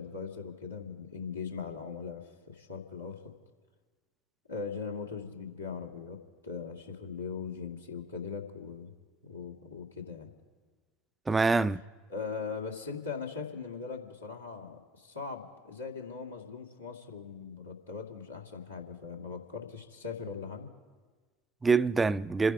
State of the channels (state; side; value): normal; both; correlation 0.56